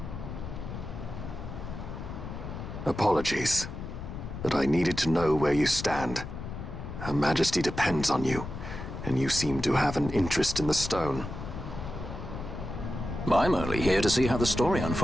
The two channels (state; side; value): noise; left; rumble, 8 dB below the sound